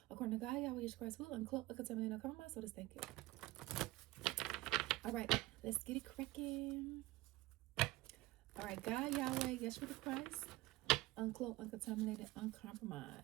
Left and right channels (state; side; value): quieter; left; 18.7 dB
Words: According to God, Yahweh, Yeshua Christ's will, uncloak, uncontaminated, uncompromised. So this, thank you. All right, let's get it cracking. All right, God, Yahweh, Yeshua Christ, uncloak, uncontaminated,